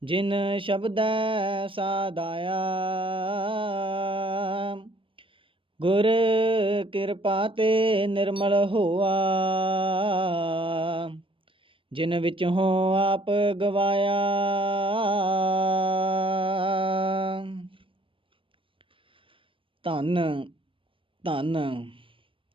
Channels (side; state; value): left; late; 0.25 ms